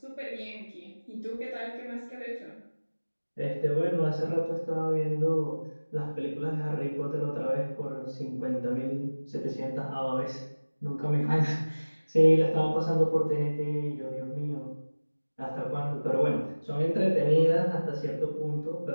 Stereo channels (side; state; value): both; inverted; correlation -1.00